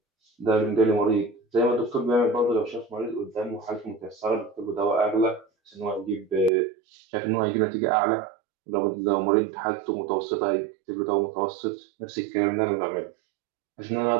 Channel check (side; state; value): left; drops out; at 6.5 s